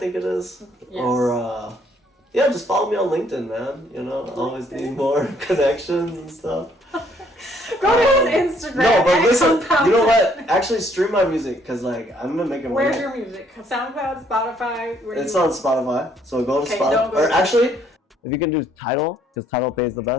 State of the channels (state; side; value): normal; both; correlation 0.66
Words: it is. Yes. Or yeah, just follow me on LinkedIn, man. You know, I always need more connections and stuff. Go to his Instagram. No, but listen, you know 10. what? Actually, stream my music because like I'm gonna make it. Where's your music? SoundCloud, Spotify. It's on Spotify, so go to Spotify. Or actually, if you can do Tidal, because Tidal pays the